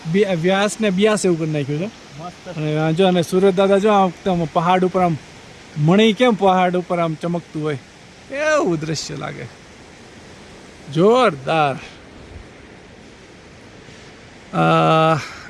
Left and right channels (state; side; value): identical; both; correlation 1.00